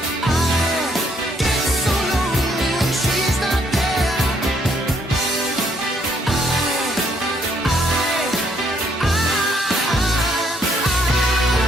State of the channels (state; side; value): normal; both; correlation 0.69